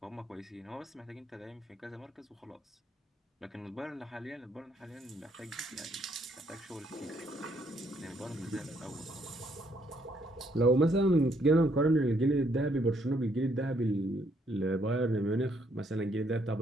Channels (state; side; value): normal; both; correlation 0.70